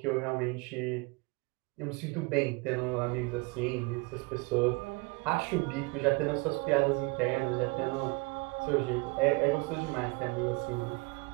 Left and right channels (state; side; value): quieter; left; 27.8 dB